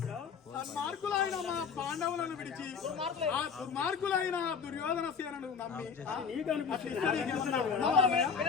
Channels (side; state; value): right; quieter; 6.2 dB